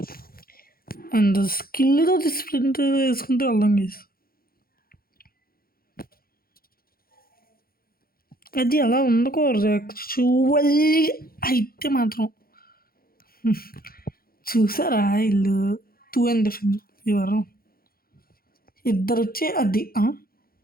అండ్ స్కిల్తో స్ప్రింట్ వేసుకుంటూ వెళ్దాం గైస్ అది అలా ఉండకూడదు యాక్చువల్లీ అయితే మాత్రం చూసారా ఇల్లు 2 అండ్ డిఫెన్స్ ఎవరు ఇద్దరు వచ్చి అది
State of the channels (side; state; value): right; late; 0.43 ms